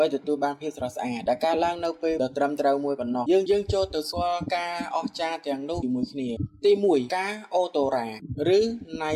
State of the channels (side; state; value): both; identical; correlation 1.00